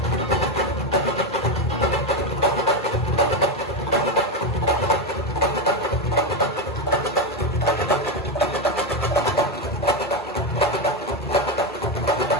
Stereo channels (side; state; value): both; normal; correlation 0.10